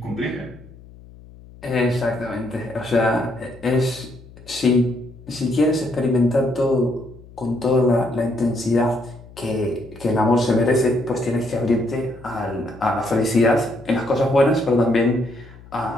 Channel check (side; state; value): left; noise; hum, 21 dB below the sound